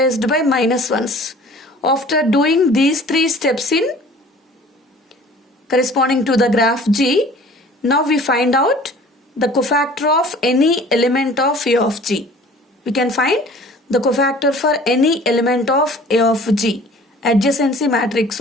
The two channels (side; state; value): both; normal; correlation 0.48